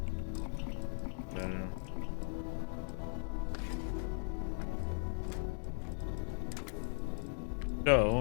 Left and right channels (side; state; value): right; silent; 52 dB below the other